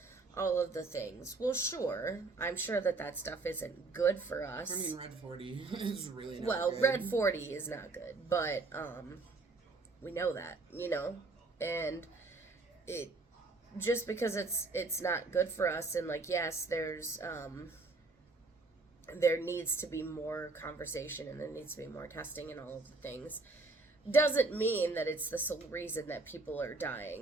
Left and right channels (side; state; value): left; quieter; 3.5 dB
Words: All of the things. Well, sure. I'm sure that stuff isn't good for us. I mean, Red 40 is really not well, good. Red 40 is not good, but we know that, and it just because it's not good for us, and like yes, there's there needs to be more conversation and there needs to be more testing and all of the things, doesn't mean that it's the sole reason that people are